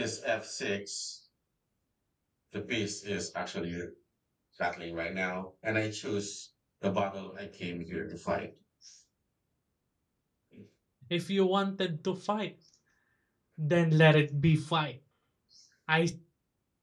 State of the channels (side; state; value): both; identical; correlation 1.00